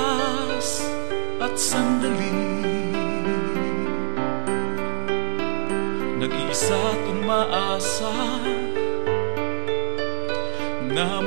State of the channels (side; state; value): left; silent; digital silence